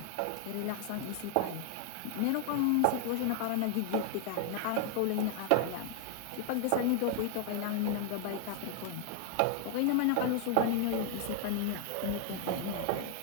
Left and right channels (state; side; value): different; both; correlation 0.00